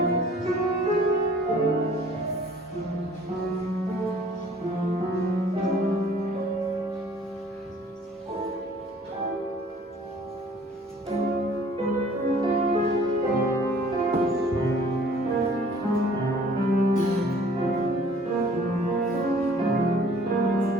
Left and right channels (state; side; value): normal; both; correlation 0.54